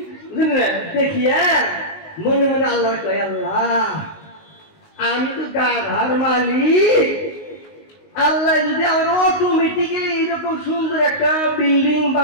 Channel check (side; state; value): right; late; 19 ms